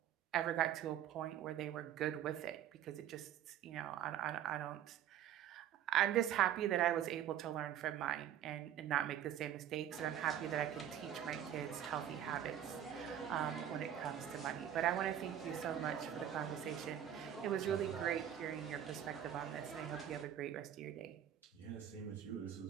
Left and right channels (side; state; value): left; quieter; 10.4 dB